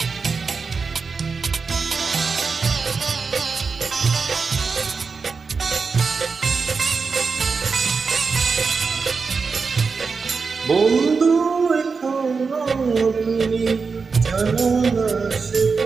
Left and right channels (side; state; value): left; quieter; 4.9 dB